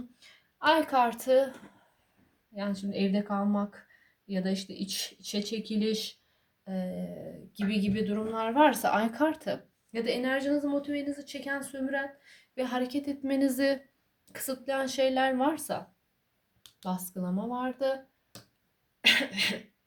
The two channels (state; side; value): identical; both; correlation 1.00